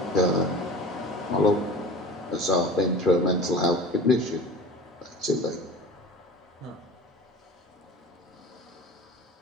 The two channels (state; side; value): normal; both; correlation 0.38